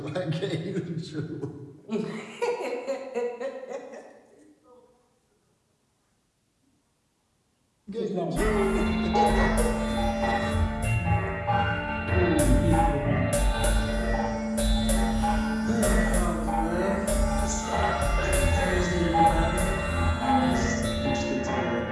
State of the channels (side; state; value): both; identical; correlation 1.00